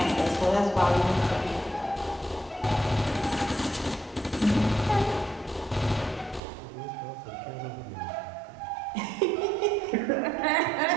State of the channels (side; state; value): left; drops out; at 6.4 s